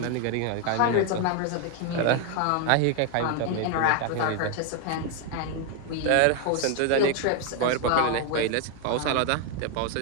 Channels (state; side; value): different; both; correlation 0.01